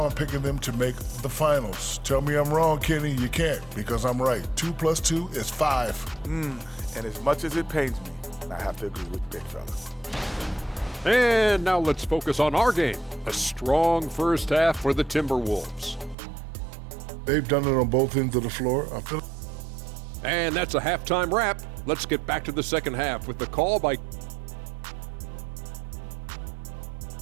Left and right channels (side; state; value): left; drops out; at 16.2 s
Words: I'm picking them to make the finals. Tell me I'm wrong, Kenny. You can't, because I'm right. 2 + 2 is 5. And as much as it pains me, I have to agree with Big Fella. And now let's focus on our game. A strong first half for the Timberwolves. They've done it on both ends of the floor. I feel. And that's a halftime wrap. Let's get back to the second half with the call by...